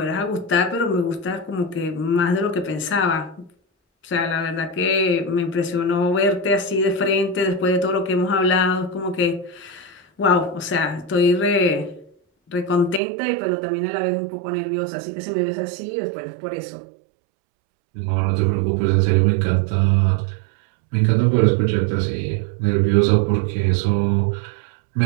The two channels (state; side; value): drops out; left; at 13.0 s